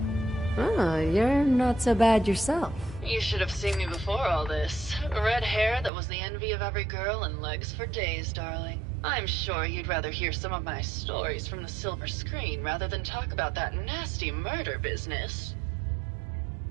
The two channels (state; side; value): drops out; left; at 5.9 s